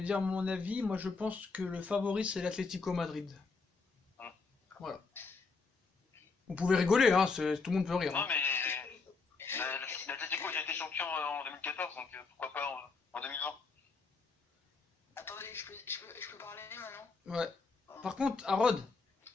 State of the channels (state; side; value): quieter; right; 4.4 dB